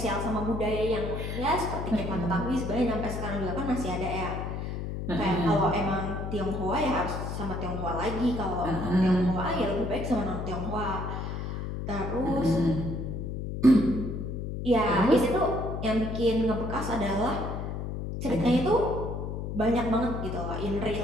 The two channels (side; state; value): left; noise; hum, 4 dB below the sound